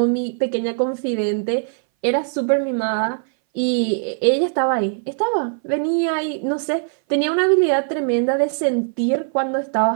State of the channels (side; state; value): left; silent; 60 dB below the other